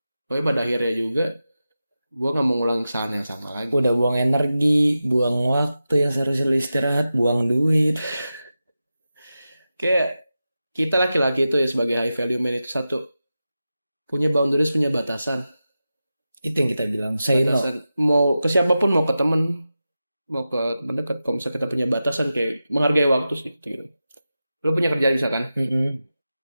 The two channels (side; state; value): both; inverted; correlation -0.92